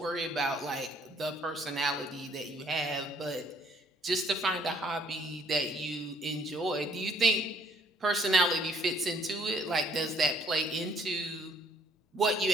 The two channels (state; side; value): normal; both; correlation 0.63